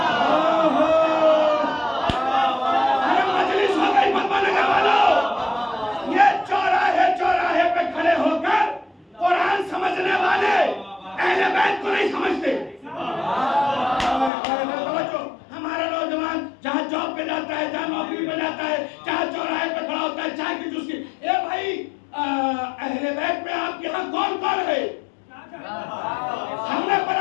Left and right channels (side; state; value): right; drops out; at 14.3 s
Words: ارے مجلس ہو گئی پدما نگر والوں. یہ چوراہے چوراہے پہ کھڑے ہو کر قرآن سمجھنے والے اہل بیت کو نہیں سمجھتے. ہمارا نوجوان جہاں جاب پہ جاتا ہے, جہاں نوکری پہ جاتا ہے, جہاں چوراہے پہ کھڑا ہوتا ہے چائے کی جوس کی, اے بھائی اہل بیت میں آپ کے ہاں کون کون ہے؟ ہم نے